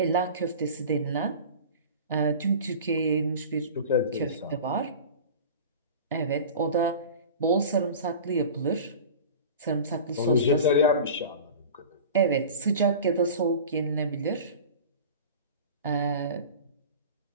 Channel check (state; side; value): inverted; both; correlation -0.36